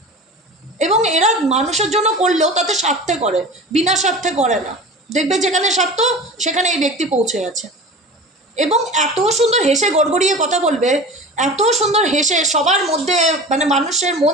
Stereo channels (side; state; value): both; normal; correlation 0.35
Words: এবং এরা মানুষের জন্য করলেও তাতে স্বার্থে করে, বিনা স্বার্থে করে না। দেখবে যেখানে স্বার্থ, সেখানে এই ব্যক্তি পৌঁছে গেছে। এবং এত সুন্দর হেসে গড়গড়িয়ে কথা বলবে, এত সুন্দর হেসে সবার মধ্যে মানে মানুষের মন